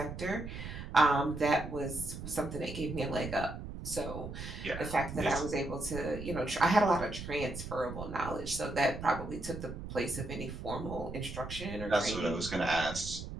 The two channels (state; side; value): noise; right; rumble, 9 dB below the sound